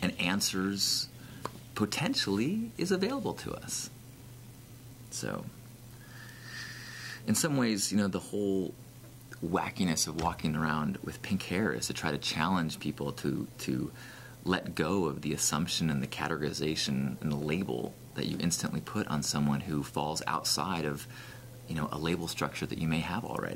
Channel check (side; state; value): both; identical; correlation 1.00